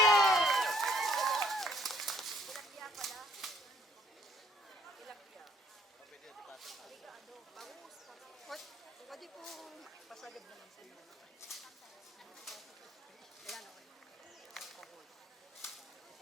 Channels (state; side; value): normal; both; correlation 0.62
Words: Pwede po pasagad naman sa iyo. Ayan, okay.